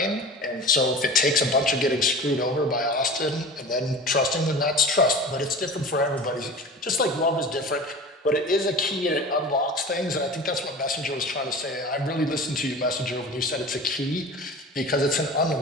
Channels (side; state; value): both; normal; correlation 0.36